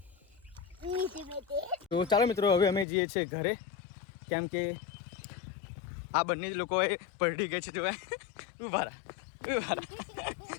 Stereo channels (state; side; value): drops out; right; at 2.9 s